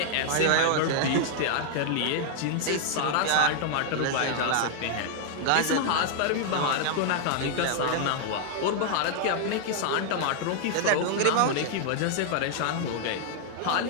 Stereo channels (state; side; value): different; both; correlation -0.01